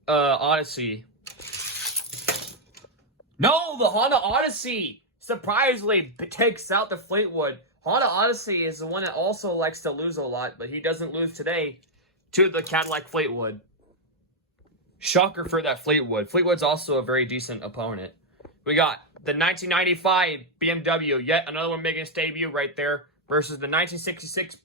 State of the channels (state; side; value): normal; both; correlation -0.01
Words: Odyssey? No, the Honda Odyssey surprisingly takes out the Fleetwood. Honda Odyssey is the one that also likes to lose a lot, but he doesn't lose today to the Cadillac Fleetwood. Shocker for that Fleetwood. Fleetwood's also a very decent opponent. We got the 1995 BMW, yet another one making its debut right there, versus the 1966